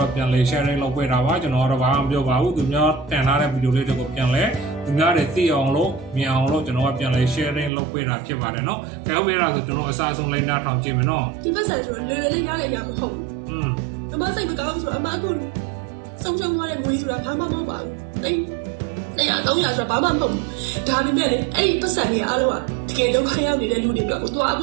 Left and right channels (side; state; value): left; drops out; at 7.7 s